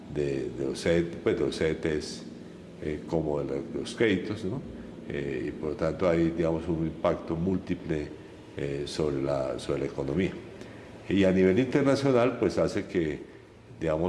los CDTs como de los créditos, ¿no? Y por lo tanto hay, digamos, un impacto múltiple sobre la economía. Y a nivel internacional pues hace que,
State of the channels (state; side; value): identical; both; correlation 1.00